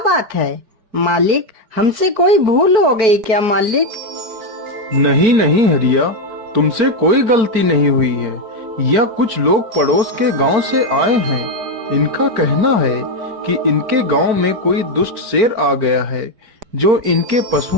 है। मालिक, हमसे कोई भूल हो गई क्या मालिक? नहीं नहीं हरिया, तुमसे कोई गलती नहीं हुई है। यह कुछ लोग पड़ोस के गांव से आए हैं। इनका कहना है कि इनके गांव में कोई दुष्ट शेर आ गया है जो इनके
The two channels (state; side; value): late; left; 4.5 ms